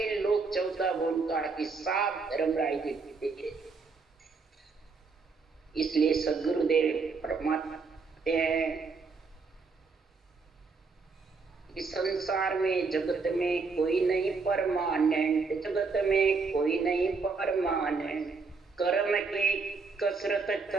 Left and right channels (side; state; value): left; quieter; 4.5 dB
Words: लोक 14 वन का हिसाब धर्मराज जी। इसलिए सदगुरुदेव फरमाते हैं कि संसार में जगत में कोई नहीं परमानेंट, जगत में कोई नहीं परमानेंट। कर्म की कसरत